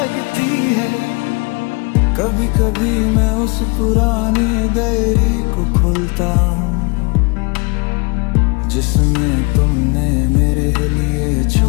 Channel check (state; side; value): quieter; right; 30.0 dB